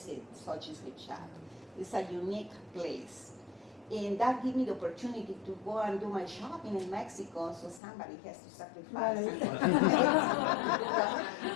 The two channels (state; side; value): drops out; right; at 7.8 s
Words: Sochi's Gift Shop. It's a unique place. And that gave me the opportunity to go and do my shopping in Mexico, so somebody has to sacrifice to